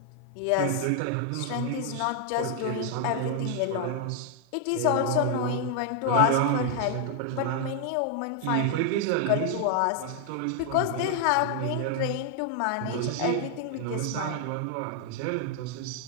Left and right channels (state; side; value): different; both; correlation 0.00